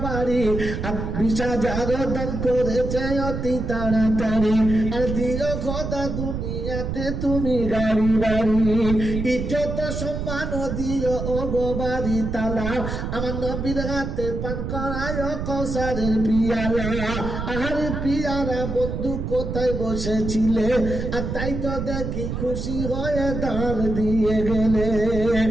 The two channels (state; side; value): noise; right; rumble, 4 dB below the sound